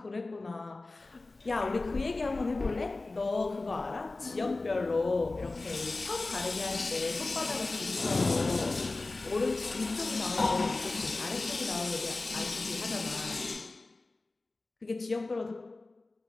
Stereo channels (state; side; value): quieter; right; 3.3 dB